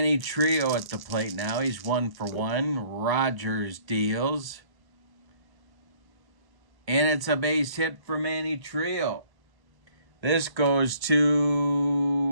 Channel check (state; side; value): late; left; 1.1 ms